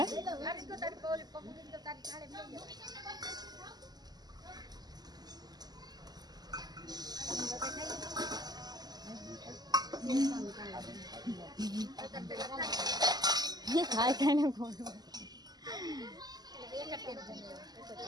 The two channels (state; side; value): late; left; 0.20 ms